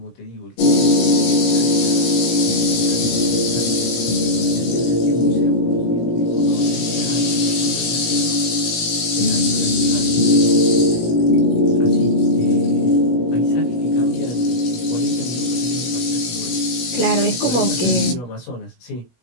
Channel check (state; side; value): late; right; 17 ms